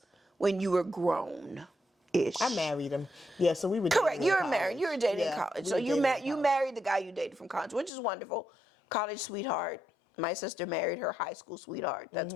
when you were grown-ish. I married him. Yeah, so we were correct. You were married. You were dating in college. So you married the guy you dated from college, which is wonderful. College sweetheart. My sister married her high school sweetheart. That's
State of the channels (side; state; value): right; drops out; at 7.9 s